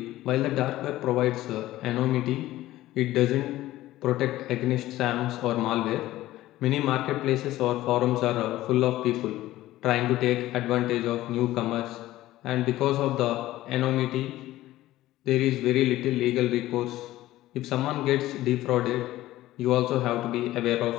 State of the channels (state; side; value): quieter; right; 15.7 dB